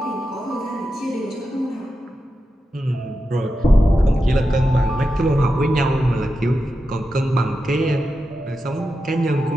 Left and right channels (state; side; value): normal; both; correlation 0.90